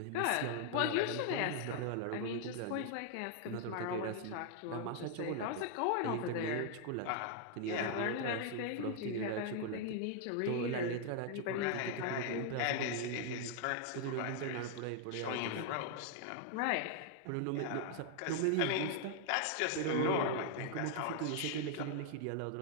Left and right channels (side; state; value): both; different; correlation 0.00